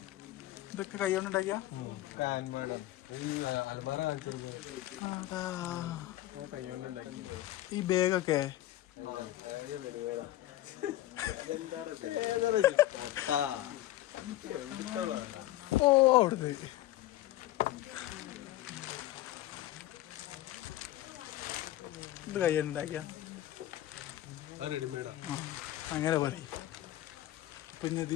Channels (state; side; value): quieter; right; 15.1 dB